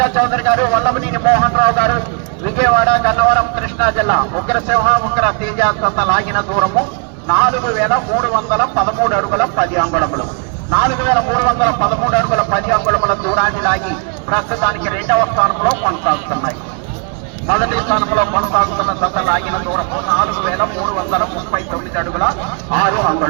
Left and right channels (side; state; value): left; quieter; 38.9 dB